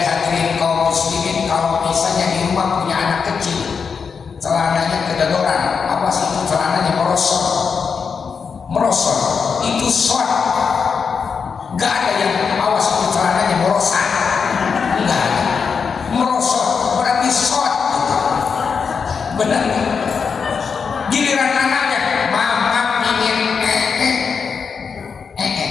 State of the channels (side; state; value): right; quieter; 5.8 dB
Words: kaum muslimin, kalau misalnya di rumah punya anak kecil, celananya kedodoran, apa sih itu celananya merosot,